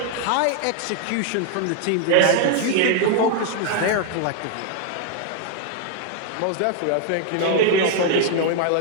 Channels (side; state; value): both; different; correlation 0.00